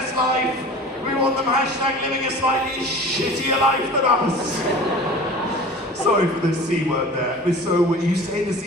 life. We want them hashtag living a slightly shittier life than us. Sorry for the C word there. But so when you say the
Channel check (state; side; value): normal; both; correlation 0.40